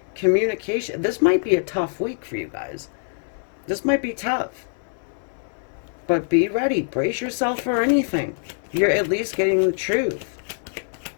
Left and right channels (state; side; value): silent; right; digital silence